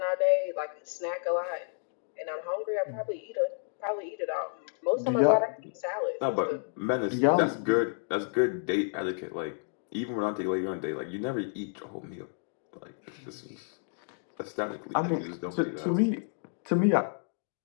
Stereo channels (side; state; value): right; silent; digital silence